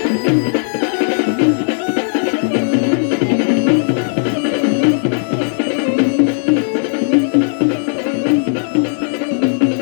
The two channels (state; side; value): silent; right; digital silence